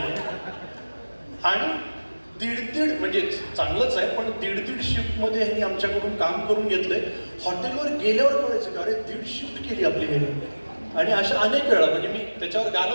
आणि दीड म्हणजे चांगलंच आहे, पण दीड शिफ्टमध्ये ह्यांनी आमच्याकडून काम करून घेतलंय. हॉटेलवर गेल्यावर कळायचं का अरे 1.5 शिफ्ट केली आपली ह्यांनी. आणि अशा अनेक वेळा म्हणजे मी त्याच्यावर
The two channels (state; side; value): inverted; both; correlation -1.00